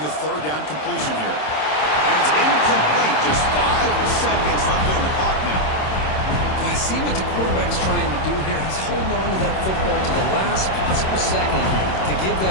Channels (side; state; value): right; late; 26 ms